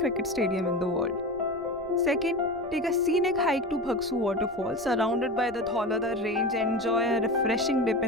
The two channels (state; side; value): noise; left; rumble, 25 dB below the sound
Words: stadium in the world. Second, take a scenic hike to Bhagsu waterfall, surrounded by the Dhaulada range, and enjoy a refreshing dip